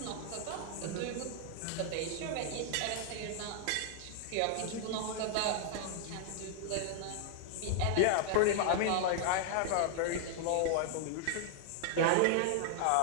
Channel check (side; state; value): both; different; correlation 0.00